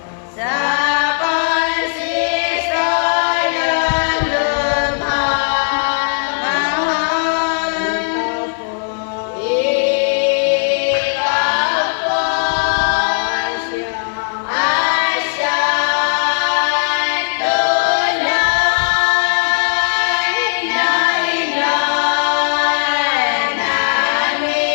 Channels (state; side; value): silent; right; 62 dB below the other